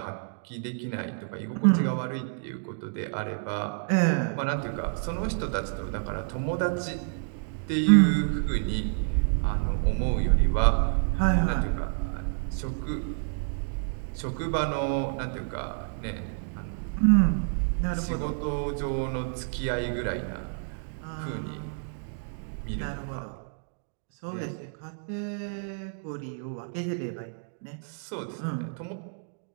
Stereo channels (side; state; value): left; silent; digital silence